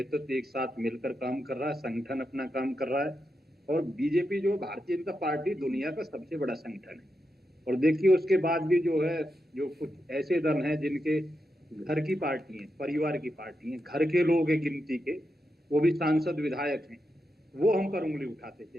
एक साथ मिलकर काम कर रहा है, संगठन अपना काम कर रहा है। और बीजेपी जो भारतीय जनता पार्टी दुनिया का सबसे बड़ा संगठन है। और देखिए उसके बाद भी जो है, जो कुछ ऐसे दल हैं जिनके घर की पार्टी है, परिवार की पार्टी है, घर के लोग हैं गिनती के, वो भी सांसद विधायक हैं, वो हम पर उंगली उठाते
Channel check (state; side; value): normal; both; correlation 0.86